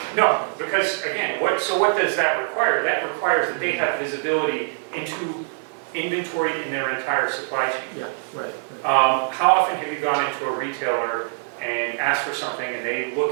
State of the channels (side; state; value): left; silent; 63 dB below the other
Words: No, because again, what does that require? That requires that they have visibility into inventory in their entire supply chain. Yeah, right. How often have you gone into a retailer and asked for something and they